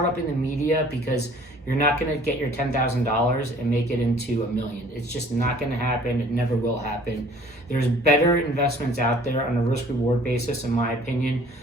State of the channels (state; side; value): normal; both; correlation 0.53